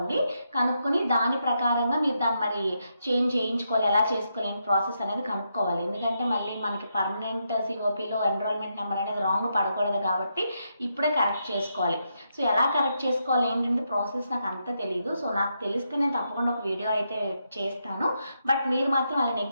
దాని ప్రకారంగా మీరు దాన్ని మరి చేంజ్ చేయించుకోవాలి, ఎలా చేసుకోవాలి ప్రాసెస్ అనేది కనుక్కోవాలి. ఎందుకంటే మళ్ళీ మనకి పర్మనెంట్ సిఓపిలో ఎన్రోల్మెంట్ నెంబర్ అనేది రాంగ్ పడకూడదు కాబట్టి ఇప్పుడే కరెక్ట్ చేసుకోవాలి. సో ఎలా కరెక్ట్ చేసుకోవాలి ఏంటంటే ప్రాసెస్ నాకు అంత తెలియదు. సో నాకు తెలిస్తే నేను తప్పకుండా ఒక వీడియో అయితే చేస్తాను. బట్ మీరు మాత్రం అలా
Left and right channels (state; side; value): inverted; both; correlation -0.82